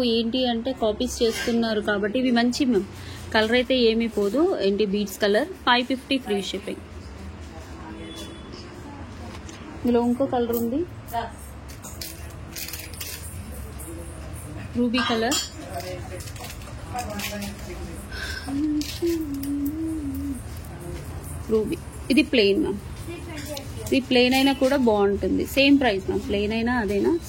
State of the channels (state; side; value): identical; both; correlation 1.00